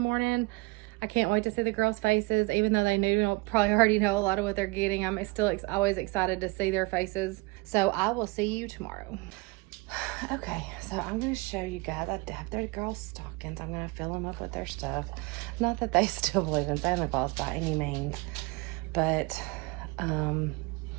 I can't wait to see the girls' faces, even though they probably already know a lot of what they're getting. I'm still always excited to see their faces. So I will see you tomorrow. Okay, so I'm going to show you guys. I have their girls' stockings. I'm going to fill them up with their stuff. Not that they still believe in Santa Claus by any means, but I don't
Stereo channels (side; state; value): left; quieter; 26.4 dB